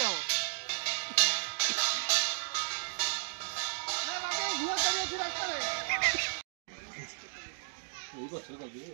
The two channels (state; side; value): silent; left; digital silence